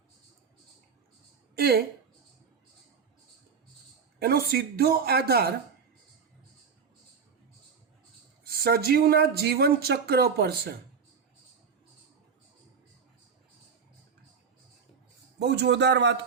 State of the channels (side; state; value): left; quieter; 6.1 dB